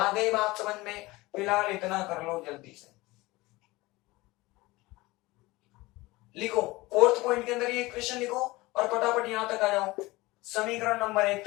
गई बात समझ में? फिलहाल इतना कर लो जल्दी से। लिखो फोर्थ पॉइंट के अंदर ये इक्वेशन लिखो और फटाफट यहां तक आ जाओ, समीकरण नंबर 1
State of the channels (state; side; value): quieter; right; 21.0 dB